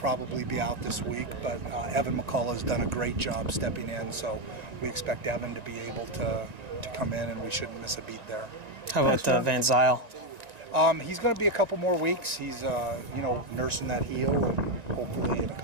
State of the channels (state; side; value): late; left; 1.9 ms